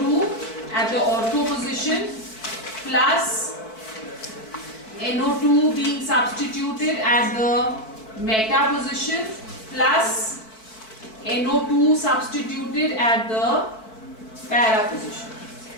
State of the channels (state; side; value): late; right; 4.6 ms